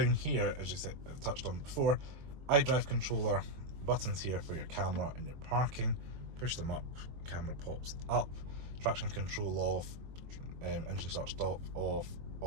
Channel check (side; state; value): left; late; 23 ms